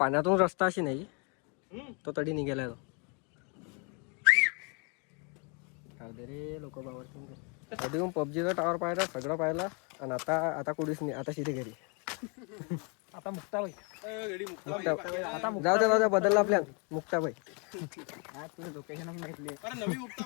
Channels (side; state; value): right; quieter; 35.0 dB